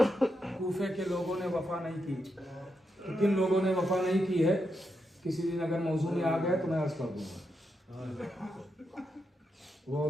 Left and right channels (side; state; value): both; normal; correlation 0.84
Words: कूफे के लोगों ने वफा नहीं की। तो किन लोगों ने वफा नहीं की है, किसी दिन अगर मौजू में आ गया तो मैं अर्ज कर दूंगा। वो